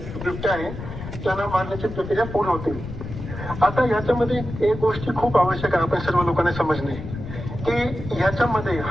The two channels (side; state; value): left; noise; rumble, 9 dB below the sound